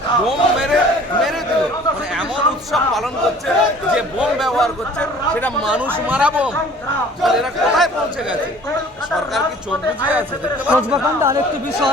বোম মেরে দিল। মানে এমন উৎসব পালন করছে যে বোম ব্যবহার করছে, সেটা মানুষ মারা বোম। এরা কোথায় পৌঁছে গেছে? সরকার কি চোখ বুঝিয়ে আছে? দেখতে পাচ্ছেন। আরেকটি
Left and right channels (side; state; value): both; normal; correlation 0.50